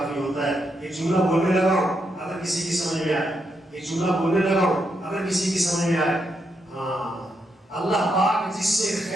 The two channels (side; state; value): both; normal; correlation 0.81